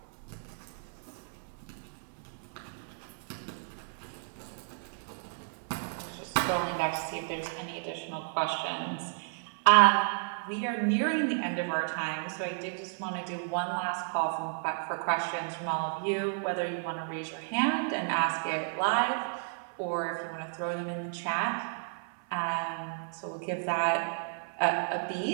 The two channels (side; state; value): left; silent; 56 dB below the other